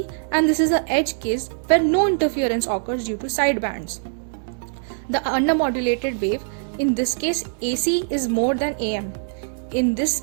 and this is the edge case where no interference occurs due to sidebands. The undermodulated wave In this case, AC is more than AM. In this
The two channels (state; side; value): silent; left; digital silence